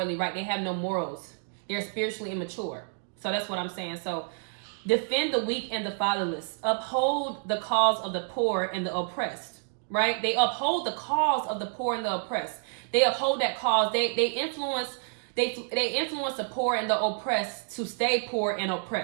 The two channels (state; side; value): silent; left; 59 dB below the other